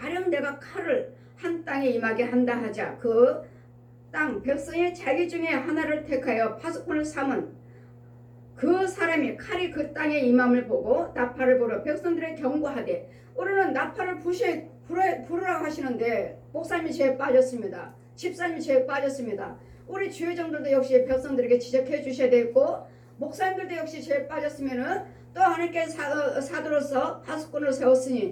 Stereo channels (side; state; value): both; identical; correlation 1.00